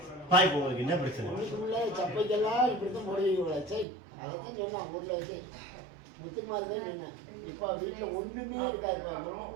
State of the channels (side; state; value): left; drops out; at 3.9 s